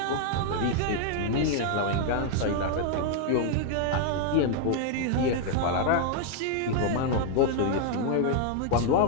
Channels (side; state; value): both; different; correlation 0.00